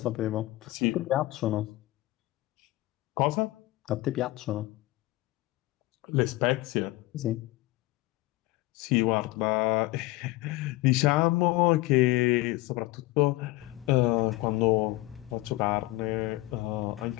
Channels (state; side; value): quieter; right; 19.0 dB